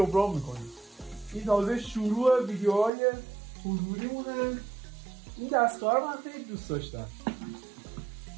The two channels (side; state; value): left; drops out; at 2.9 s